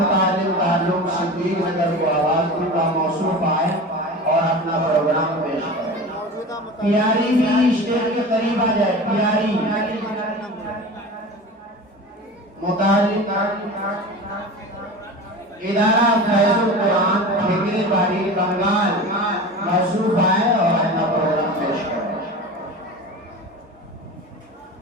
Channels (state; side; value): normal; both; correlation 0.32